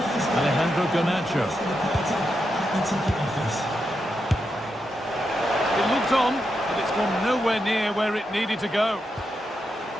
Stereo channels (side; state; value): both; normal; correlation 0.85